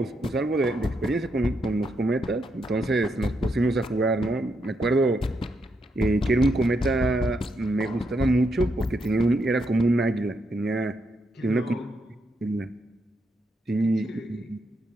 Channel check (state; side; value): normal; both; correlation 0.80